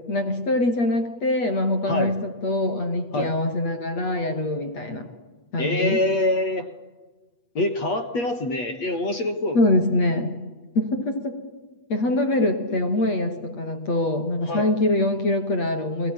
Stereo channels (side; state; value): right; late; 8.4 ms